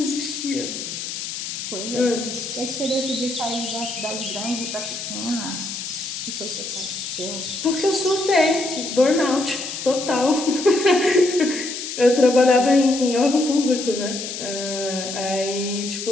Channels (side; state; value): left; noise; hiss, 6 dB below the sound